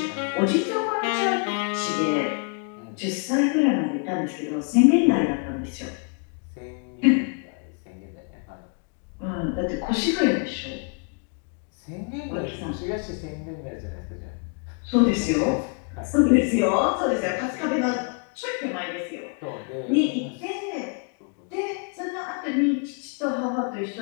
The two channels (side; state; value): right; quieter; 39.1 dB